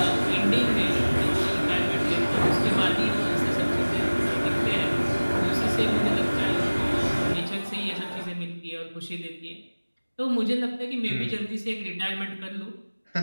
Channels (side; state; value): both; inverted; correlation -1.00